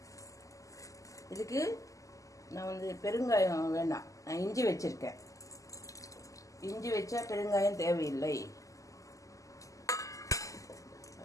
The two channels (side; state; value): right; late; 0.16 ms